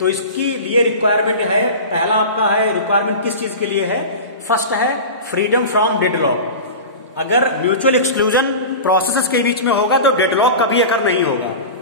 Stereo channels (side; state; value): both; inverted; correlation -0.30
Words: इसकी लिए रिक्वायरमेंट है, पहला आपका है रिक्वायरमेंट किस चीज के लिए है. फर्स्ट है फ्रीडम फ्रॉम डेडलॉक. अगर म्यूचुअल एक्सक्लूजन प्रोसेसेस के बीच में होगा तो डेडलॉक कभी अकर नहीं होगा.